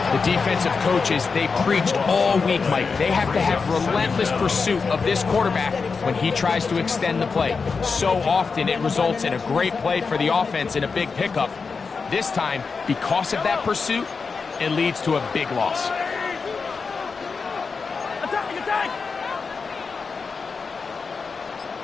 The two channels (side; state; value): right; quieter; 4.9 dB